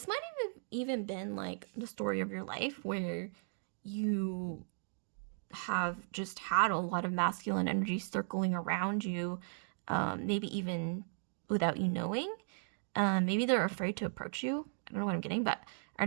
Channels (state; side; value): silent; left; digital silence